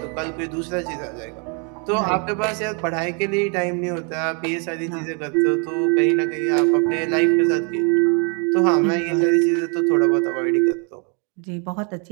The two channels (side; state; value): left; quieter; 36.6 dB